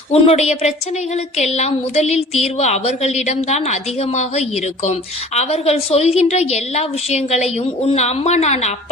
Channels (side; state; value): both; normal; correlation 0.46